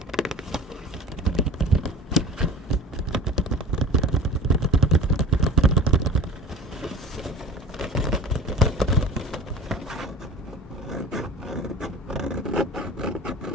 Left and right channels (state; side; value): normal; both; correlation 0.38